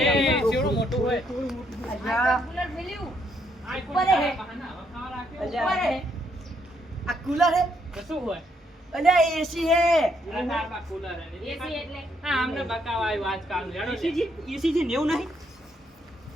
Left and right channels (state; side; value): normal; both; correlation 0.73